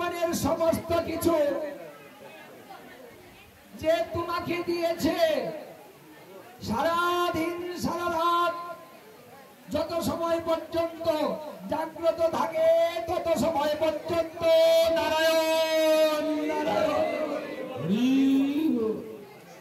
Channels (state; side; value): identical; both; correlation 1.00